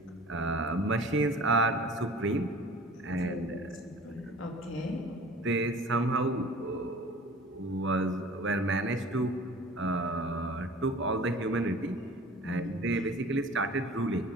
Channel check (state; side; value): normal; both; correlation 0.45